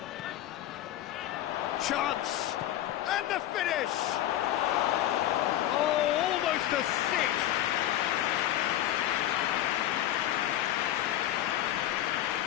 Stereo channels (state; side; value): quieter; right; 12.9 dB